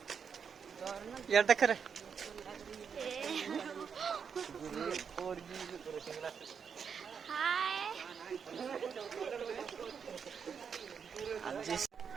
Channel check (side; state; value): left; quieter; 6.7 dB